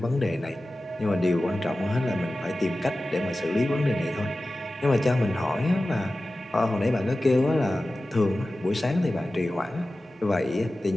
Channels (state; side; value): normal; both; correlation 0.95